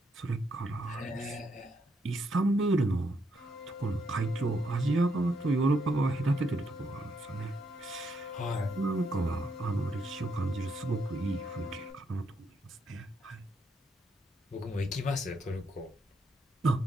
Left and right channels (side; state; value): both; normal; correlation 0.76